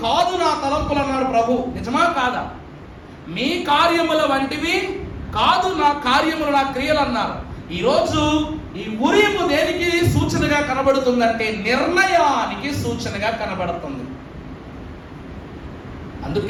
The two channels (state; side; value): identical; both; correlation 1.00